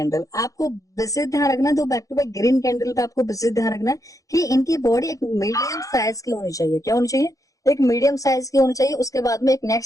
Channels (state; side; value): late; right; 0.16 ms